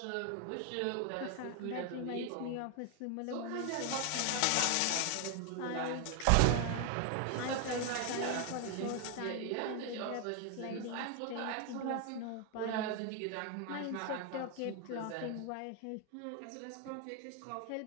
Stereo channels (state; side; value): different; both; correlation 0.00